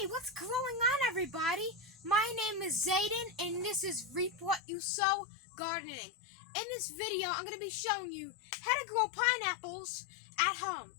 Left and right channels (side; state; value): right; drops out; at 4.6 s